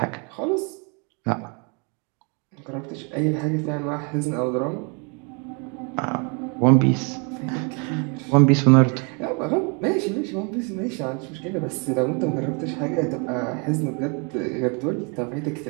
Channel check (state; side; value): quieter; left; 34.3 dB